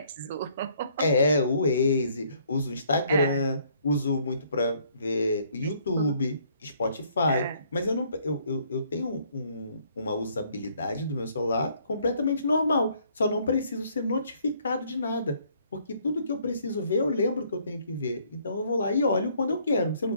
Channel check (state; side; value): inverted; both; correlation -0.64